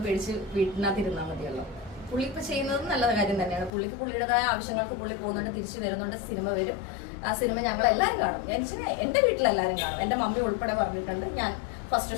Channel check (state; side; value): drops out; right; at 3.7 s